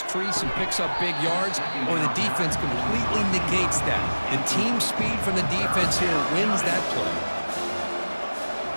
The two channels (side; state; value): both; inverted; correlation -1.00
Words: crease and picks up big yards, or the defense completely negates that. The team speed from the defense here wins that play.